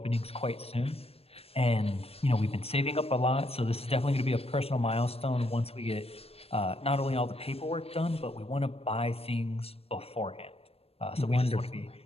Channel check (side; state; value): right; late; 0.28 ms